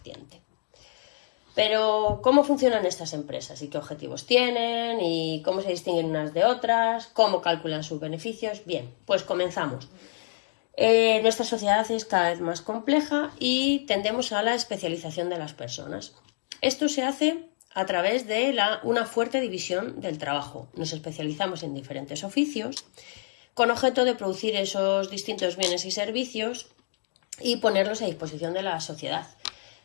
Pero, ¿cómo funcionan estas empresas? ¿Y qué objetivos tienen? ¿Y cómo se distinguen unas de otras? ¿Cómo calculan sus beneficios? Bien, pues comenzamos. Nuestra sociedad es cada vez más compleja y tendemos a la especialización de las personas. Esto se hace a través de una fuerte división del trabajo. Nos especializamos en diferentes oficios con objeto de producir esos distintos bienes y servicios y ponerlos a disposición de la sociedad.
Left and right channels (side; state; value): right; silent; digital silence